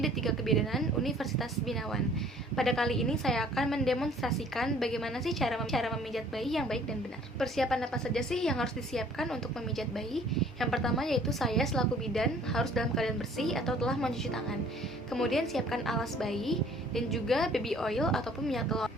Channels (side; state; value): both; normal; correlation 0.54